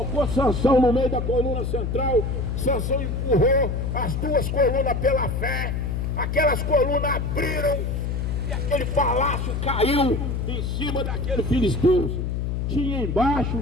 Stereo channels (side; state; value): left; noise; hum, 1 dB below the sound